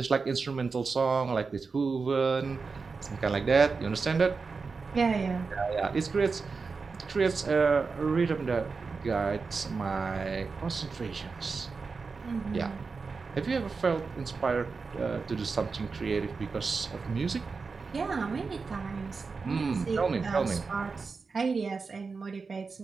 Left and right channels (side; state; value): left; quieter; 4.7 dB